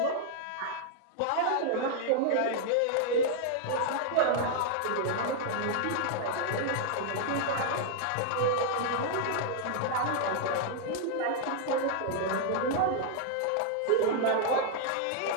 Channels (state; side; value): different; both; correlation -0.01